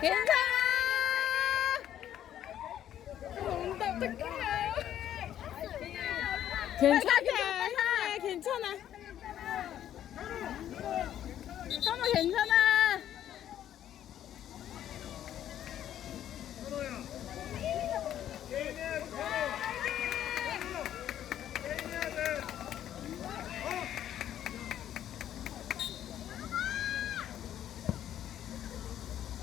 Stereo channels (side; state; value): right; quieter; 11.1 dB